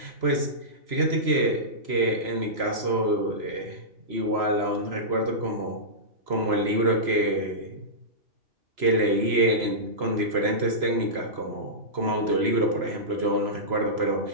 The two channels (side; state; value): left; late; 3.0 ms